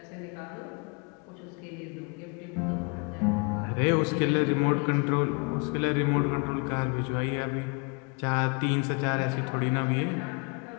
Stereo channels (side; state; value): right; quieter; 33.4 dB